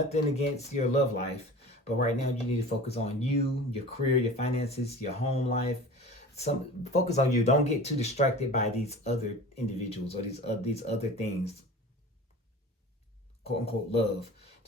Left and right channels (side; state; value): both; normal; correlation 0.38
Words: against your love life, but right now you need to focus on you, your career, your finances, your home life. Focus on you. Don't get too distracted by these other individuals or these other things, quote unquote love.